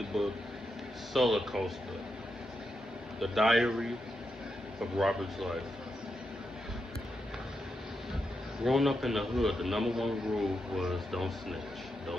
book, Soulacoaster, the diary of Robert's life. Growing up in the hood, the number one rule was don't snitch,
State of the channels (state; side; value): normal; both; correlation 0.85